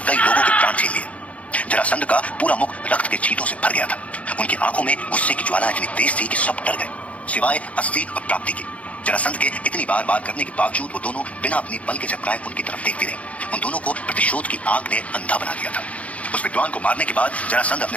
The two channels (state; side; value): late; right; 0.066 ms